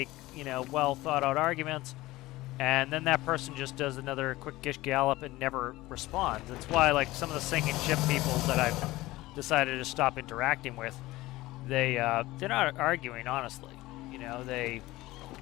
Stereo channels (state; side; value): quieter; right; 18.5 dB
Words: you know, well thought out arguments, and then that person just does another quick Gish Gallop and never responds. That's why, like, some of the sinking ship people that I've decided to stop interacting with, they're not arguing honestly. You know, they